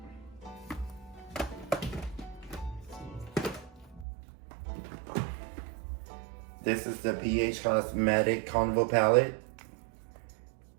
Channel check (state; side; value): drops out; left; at 4.0 s